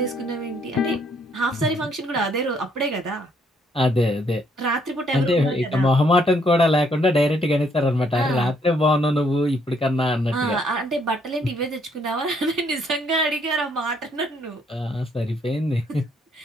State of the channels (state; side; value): normal; both; correlation 0.69